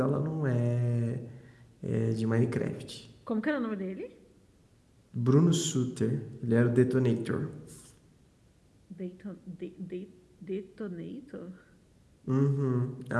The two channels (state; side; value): identical; both; correlation 1.00